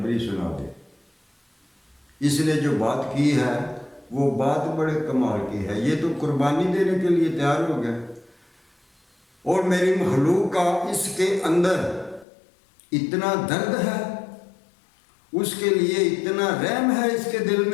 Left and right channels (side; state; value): right; drops out; at 12.2 s